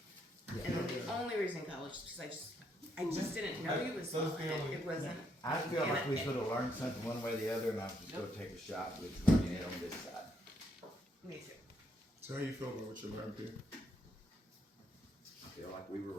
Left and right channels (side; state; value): both; normal; correlation 0.74